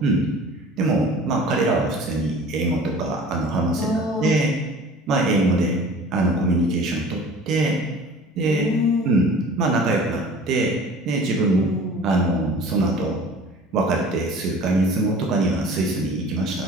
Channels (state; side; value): normal; both; correlation 0.44